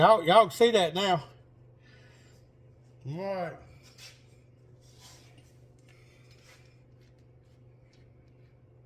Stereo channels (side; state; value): both; identical; correlation 1.00